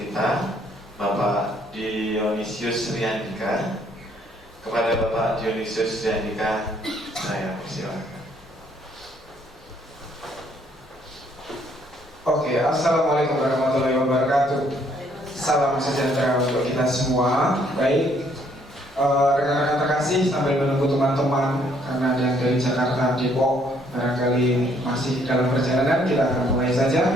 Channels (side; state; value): both; normal; correlation 0.66